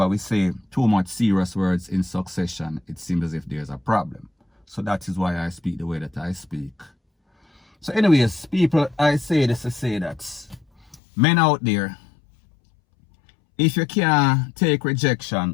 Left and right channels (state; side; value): drops out; right; at 11.0 s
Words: we say too much serious words in succession, it seems as if there's a problem. So that is why I speak the way that I speak. So anyways, people, I say this to say that men out there, if you can't take